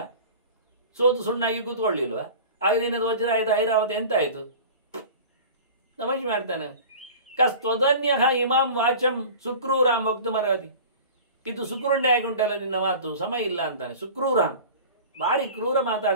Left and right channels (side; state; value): both; inverted; correlation -0.39